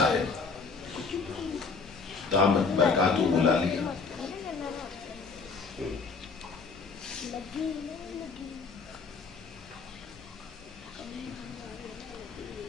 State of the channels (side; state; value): right; quieter; 4.7 dB